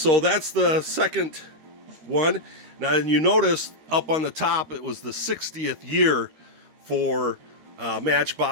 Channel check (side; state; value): left; late; 13 ms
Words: that's the second one. Now, and you notice up on the top it was the 60th year for